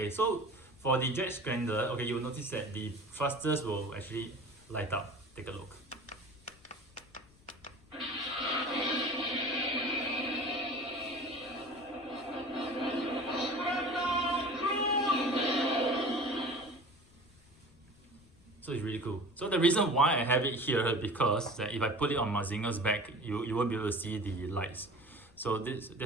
so for the jet scrambler, okay, you'll notice that the thrusters will actually light up. Take a look. So it's really cool. So the reason why I have it here is because if I put it on Mazinger's back, you won't be able to see the lights. So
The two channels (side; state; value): left; noise; rumble, 27 dB below the sound